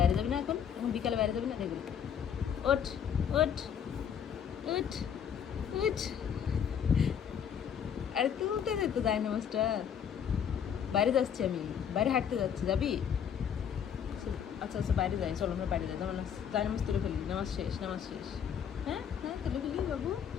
যাবি না এখন, এখন বিকালে বাইরে যাবি না, দেখবি। ওঠ ওঠ ওঠ ওঠ, আরে তুলতে দে তো ডাইনামাসটা। বাইরে যাচ্ছি আমি, বাইরে হাঁটতে যাচ্ছি, যাবি? আচ্ছা আচ্ছা বাইরে যাই, চলো আমরা বাইরে যাই, ডাইনামাস তুলে ফেলি, নামাজ শেষ, নামাজ শেষ। হ্যাঁ হ্যাঁ তুলে ফেলি বাবু,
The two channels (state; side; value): quieter; right; 8.2 dB